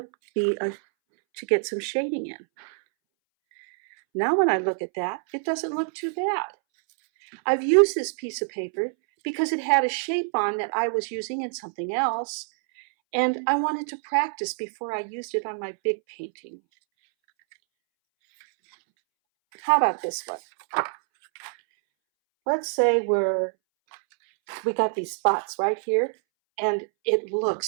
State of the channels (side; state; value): left; silent; 61 dB below the other